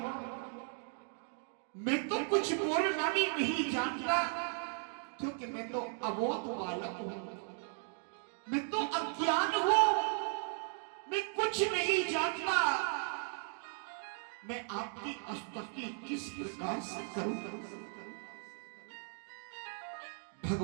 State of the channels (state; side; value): silent; left; 53 dB below the other